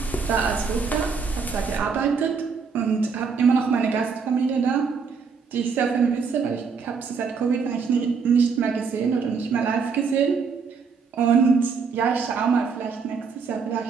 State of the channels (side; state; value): left; quieter; 5.5 dB